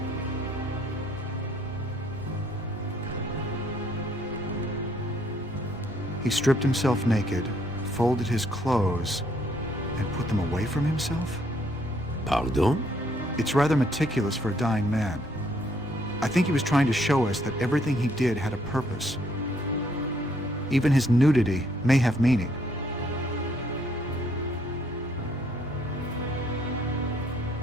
He stripped himself naked, folded his clothes, and put them away from himself? Pardon? It's rather meticulous for a dying man. I think he was trying to show us that everything he did had a purpose. Even his nudity may have meaning.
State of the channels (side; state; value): both; normal; correlation 0.67